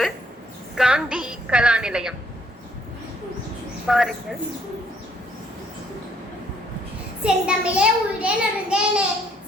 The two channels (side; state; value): both; normal; correlation 0.66